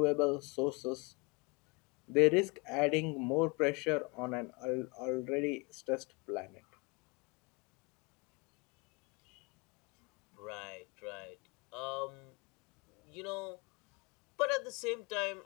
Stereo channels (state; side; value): quieter; right; 29.0 dB